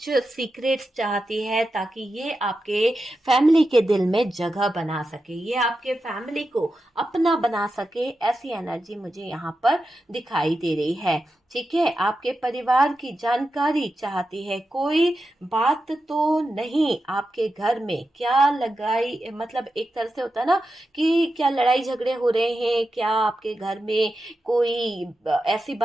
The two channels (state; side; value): normal; both; correlation 0.90